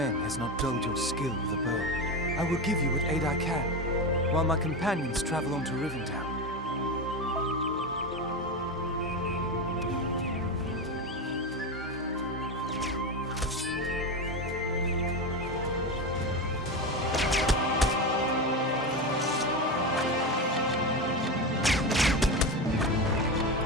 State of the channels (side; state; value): both; normal; correlation 0.18